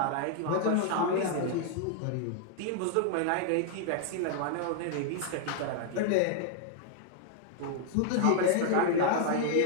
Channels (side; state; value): both; different; correlation 0.00